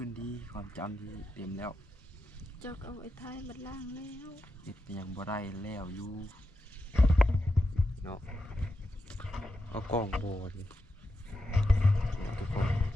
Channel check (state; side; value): normal; both; correlation 0.87